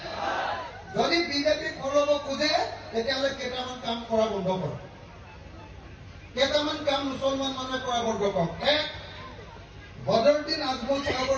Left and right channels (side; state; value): both; identical; correlation 1.00